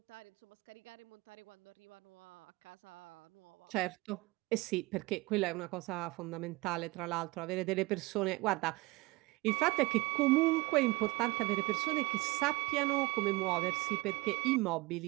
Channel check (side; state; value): left; quieter; 23.1 dB